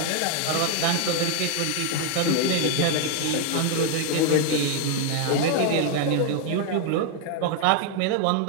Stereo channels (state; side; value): different; both; correlation 0.01